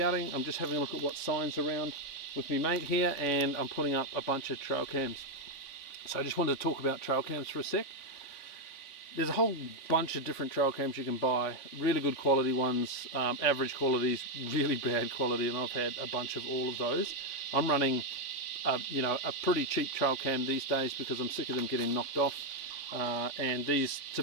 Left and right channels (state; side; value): late; right; 3.6 ms